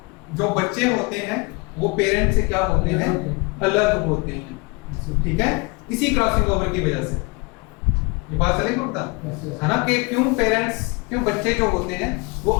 जो बच्चे होते हैं वो पेरेंट से क्या होते हैं? अलग होते हैं। ठीक है, इसी क्रॉसिंग ओवर की वजह से ये बात चलेगी होता है ना, कि क्यों बच्चे जो होते हैं वो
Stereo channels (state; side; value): quieter; right; 28.6 dB